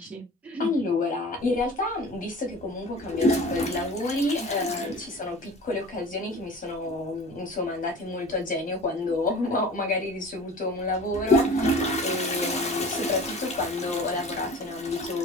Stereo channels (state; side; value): normal; both; correlation 0.40